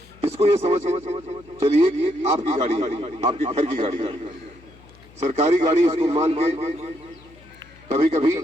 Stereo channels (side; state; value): left; noise; hum, 24 dB below the sound